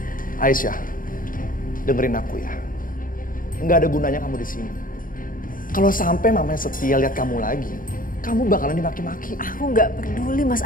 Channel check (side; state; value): right; late; 0.40 ms